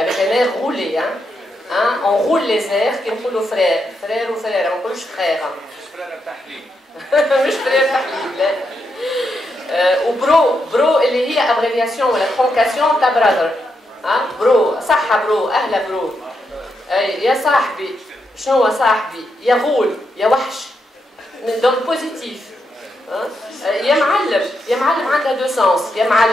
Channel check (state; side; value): normal; both; correlation 0.82